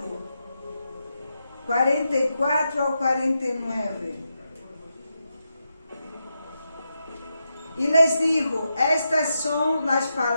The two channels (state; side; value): inverted; both; correlation -0.86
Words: 44 ao 49. E les digo, estas são as